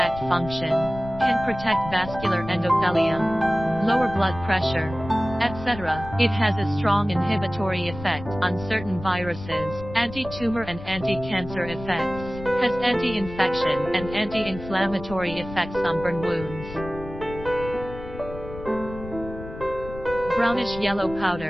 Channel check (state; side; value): noise; left; rumble, 12 dB below the sound